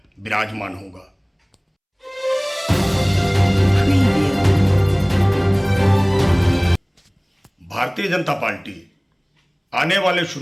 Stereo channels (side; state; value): both; identical; correlation 1.00